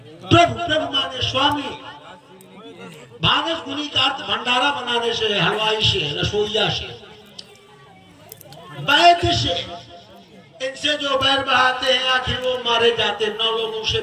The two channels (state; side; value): identical; both; correlation 1.00